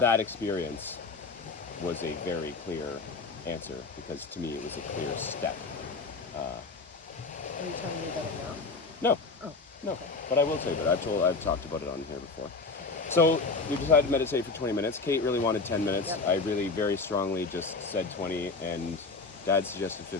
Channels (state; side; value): quieter; right; 4.0 dB